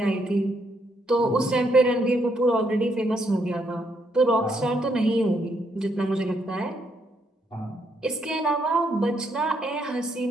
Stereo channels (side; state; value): both; normal; correlation 0.75